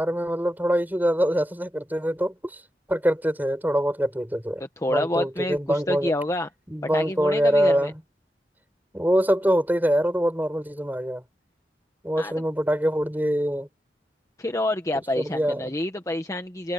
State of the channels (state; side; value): normal; both; correlation 0.88